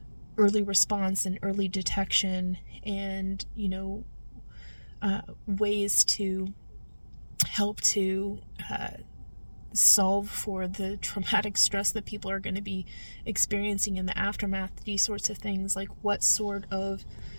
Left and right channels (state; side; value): inverted; both; correlation -1.00